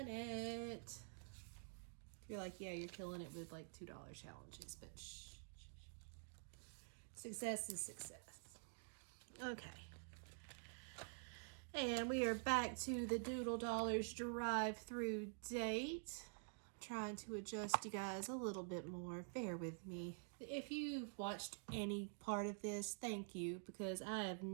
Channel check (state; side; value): silent; left; digital silence